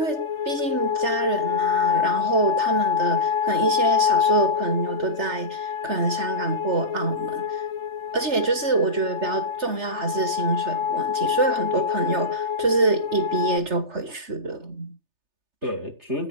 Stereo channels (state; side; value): late; left; 3.3 ms